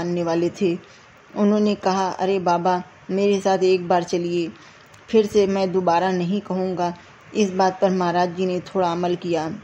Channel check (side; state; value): both; identical; correlation 1.00